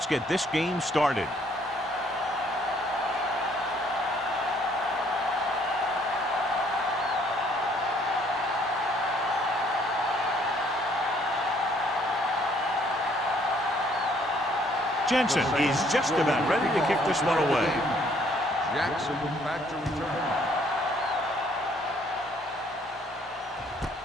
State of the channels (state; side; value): normal; both; correlation 0.63